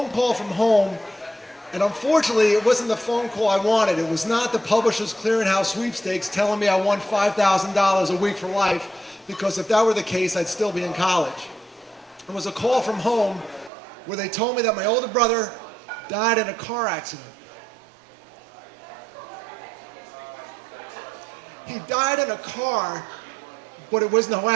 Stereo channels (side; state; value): left; drops out; at 13.7 s